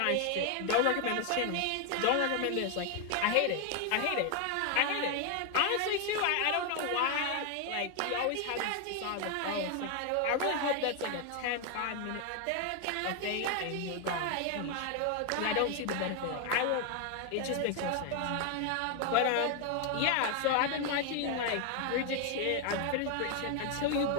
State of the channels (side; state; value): both; different; correlation 0.01